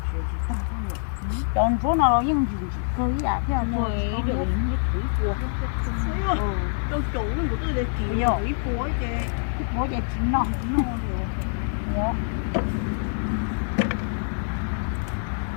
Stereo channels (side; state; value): right; silent; digital silence